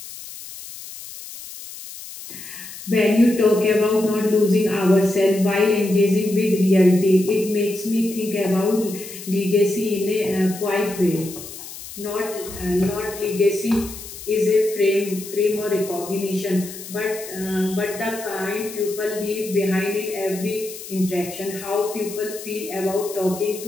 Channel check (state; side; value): noise; left; hiss, 13 dB below the sound